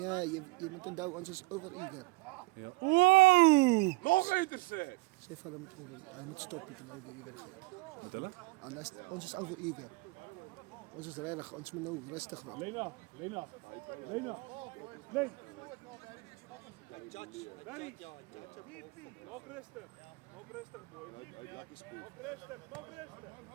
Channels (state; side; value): quieter; left; 24.4 dB